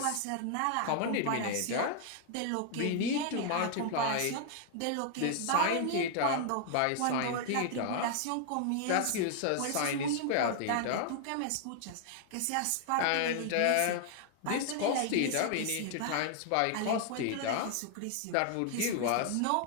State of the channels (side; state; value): both; different; correlation 0.00